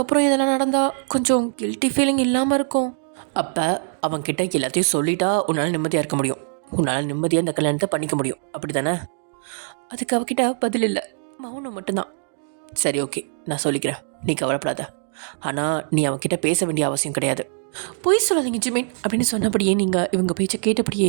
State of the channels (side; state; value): left; silent; digital silence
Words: இதெல்லாம் நடந்தால் கொஞ்சம் கில்ட்டி ஃபீலிங் இல்லாமல் இருக்கும். அப்போ அவன்கிட்ட எல்லாத்தையும் சொல்லிட்டா உன்னால் நிம்மதியாக இருக்க முடியும். உன்னால் நிம்மதியாக இந்த கல்யாணத்தை பண்ணிக்க முடியும், அப்படி தானே? அதுக்கு அவகிட்ட பதில் இல்லை, மௌனம் மட்டும்தான். சரி, ஓகே, நான் சொல்லிக்கிறேன், நீ கவலைப்படாத. ஆனால் நீ அவன்கிட்ட பேச வேண்டிய அவசியம் கிடையாது. பொய் சொல்லாதீங்க ஜிமின் அப்படின்னு சொன்னபடியே நீங்கள் இவங்க பேச்சை கேட்டபடியே